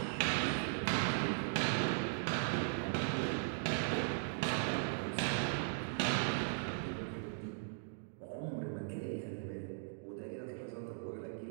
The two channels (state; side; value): silent; left; digital silence